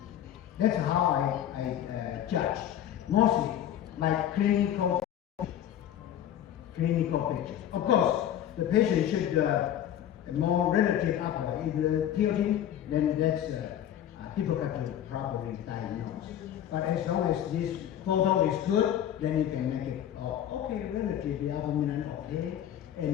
That's how I judge. Mostly like clinical pictures. Of course, the patient should more relative upper. If the tilting, then that's difficult to properly diagnose. But as long as this photo is good, then you can make it okay, relatively upper midline okay.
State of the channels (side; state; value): right; quieter; 10.8 dB